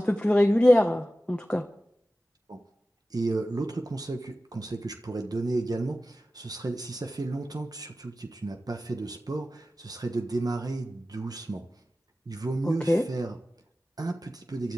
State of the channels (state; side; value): normal; both; correlation 0.94